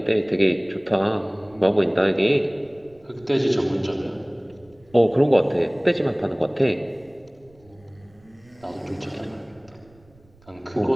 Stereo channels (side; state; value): right; noise; rumble, 29 dB below the sound